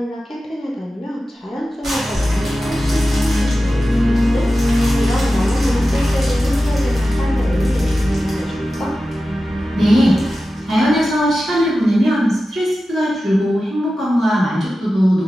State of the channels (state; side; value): normal; both; correlation 0.93